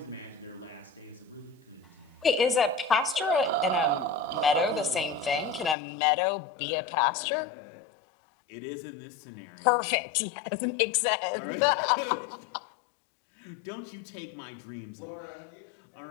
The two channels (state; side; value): drops out; right; at 5.8 s